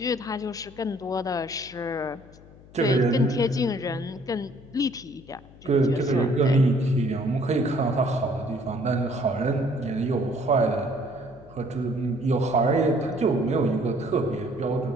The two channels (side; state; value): left; noise; hum, 22 dB below the sound